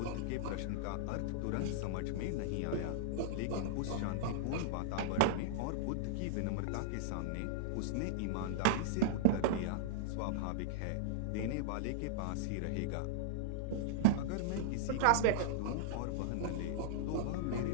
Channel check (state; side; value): different; both; correlation -0.01